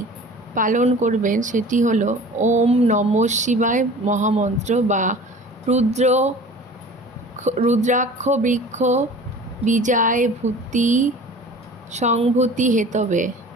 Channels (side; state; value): both; normal; correlation 0.42